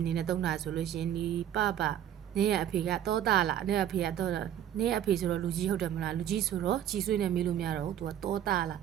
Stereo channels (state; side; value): quieter; left; 10.5 dB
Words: နေနဲ့သုံးတာဆိုလို့ရှိရင်ဒီပနေရအဖေကတောတာလားနေရအဖေကတော့နေရအဖေဆိုတော့လူကြီးဟုတ်တယ်မလားလူကြီးဆိုတော့ကြီးဆွေးနေမေးလို့မရတော့ဘူးသူကတောတာလား